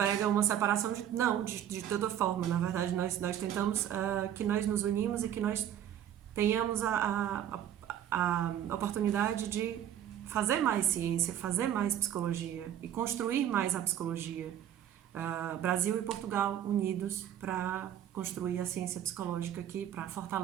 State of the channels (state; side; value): quieter; left; 10.5 dB